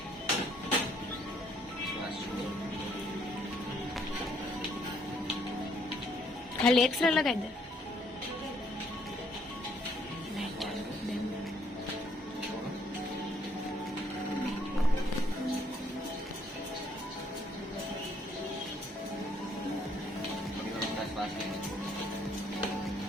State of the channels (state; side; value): normal; both; correlation 0.66